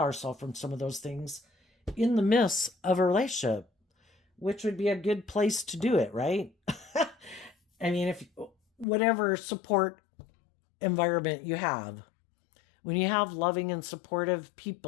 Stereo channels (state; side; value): drops out; right; at 8.8 s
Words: from some of those things in the midst of a relationship, which would be a good place to do it, right? I mean, if whatever support environment you have, when you have loving and supportive